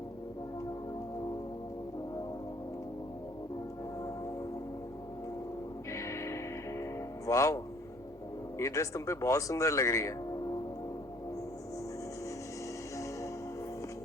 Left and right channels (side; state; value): both; normal; correlation 0.59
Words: वाओ, ये ड्रेस तुम पे बहुत सुंदर लग रही है।